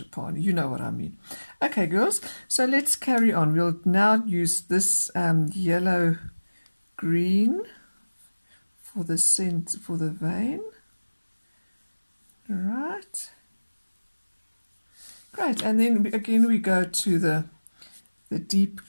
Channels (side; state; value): both; inverted; correlation -1.00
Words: You know what I mean. Okay, girls, so let's carry on. We'll now use this yellow green for the scent, for the vein. Right, great, and then again we go to the deep